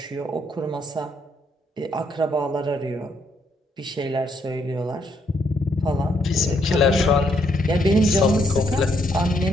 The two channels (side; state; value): both; normal; correlation 0.74